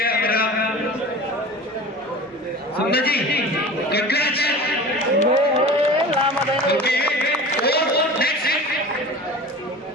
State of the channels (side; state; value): both; normal; correlation 0.37